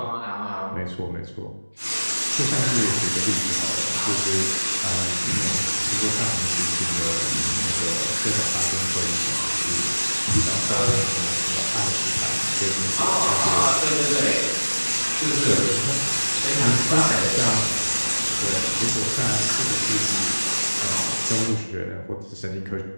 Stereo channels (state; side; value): inverted; both; correlation -1.00